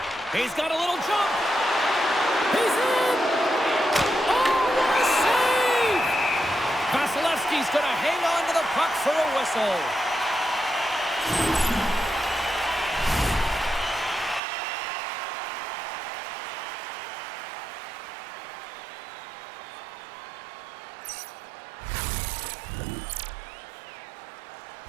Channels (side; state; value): left; drops out; at 14.4 s